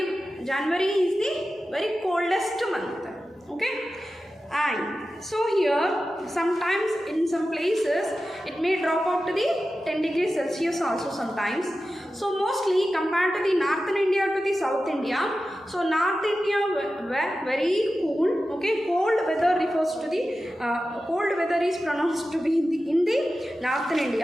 January is the very coldest month. Okay. And so here sometimes in some places it may drop out to the 10 degrees Celsius also sometimes. So mostly compared to the northern India to the south India, so north India were very cool. Okay, cold weather refers to the cold weather is pronounced to be in the northern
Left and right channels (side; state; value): both; normal; correlation 0.93